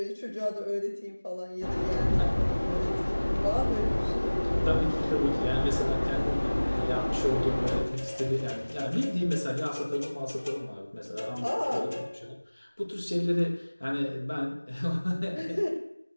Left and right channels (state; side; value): inverted; both; correlation -1.00